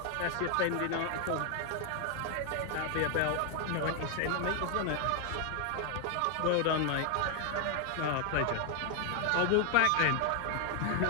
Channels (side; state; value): both; different; correlation 0.01